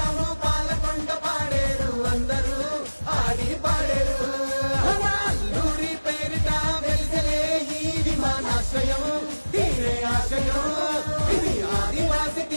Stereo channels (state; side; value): inverted; both; correlation -1.00